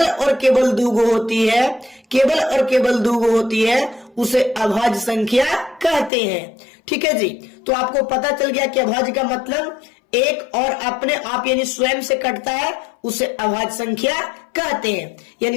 और केवल 2 गो होती है, केवल और केवल 2 गो होती है, उसे अभाज्य संख्या कहते हैं, ठीक है जी। तो आपको पता चल गया कि अभाज्य का मतलब एक और अपने आप यानी स्वयं से कटता है, उसे अभाज्य संख्या कहते हैं।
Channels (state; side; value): drops out; right; at 6.1 s